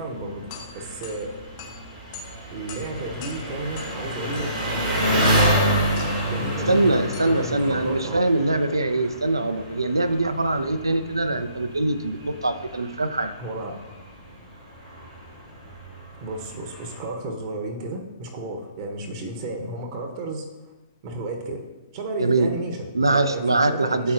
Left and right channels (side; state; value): both; inverted; correlation -0.68